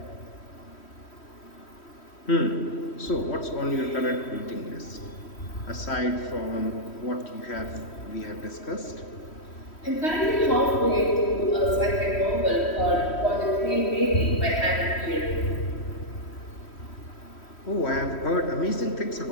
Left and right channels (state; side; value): late; right; 3.1 ms